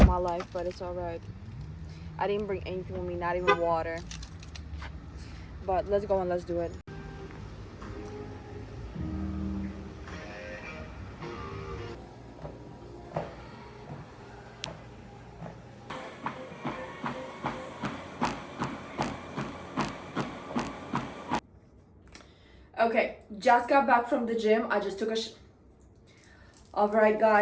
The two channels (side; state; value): both; identical; correlation 1.00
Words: my life, but it's all right. I didn't bring anything with me, not even water. But let's go and let's do it. Okay, just got back from the gym. I just took a all right,